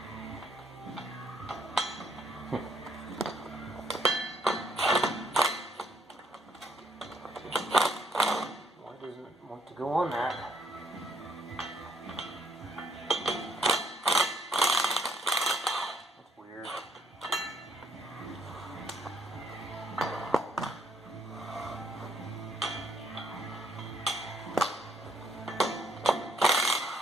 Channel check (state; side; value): normal; both; correlation 0.69